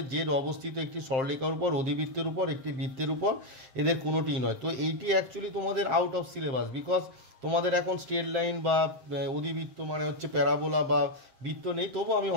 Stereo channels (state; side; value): late; left; 7.6 ms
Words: জেড অবস্থিত একটি সরলরেখার উপর, অধিবৃত্তের উপর, একটি বৃত্তের উপর, এদের কোনোটিই নয়। তো এইটি অ্যাকচুয়ালি তোমাদের আউট অফ সিলেবাস, বিকজ তোমাদের এখন স্ট্রেট লাইন বা অধিবৃত্ত মানে হচ্ছে প্যারাবোলা বা বৃত্ত নেই, তবু আমি